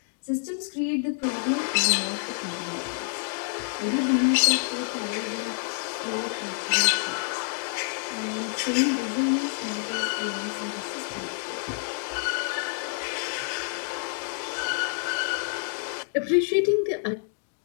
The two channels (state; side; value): silent; right; digital silence